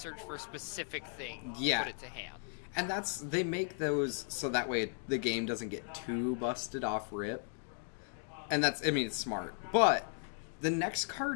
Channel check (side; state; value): right; silent; 54 dB below the other